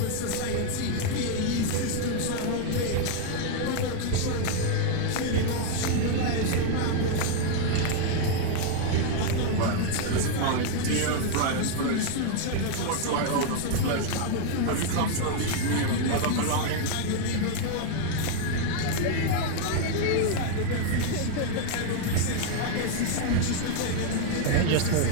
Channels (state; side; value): different; both; correlation 0.00